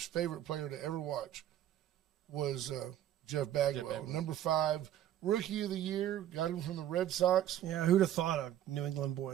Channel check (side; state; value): left; quieter; 11.7 dB